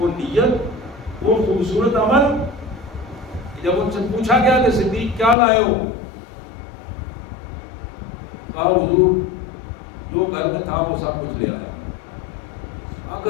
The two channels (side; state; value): right; drops out; at 5.4 s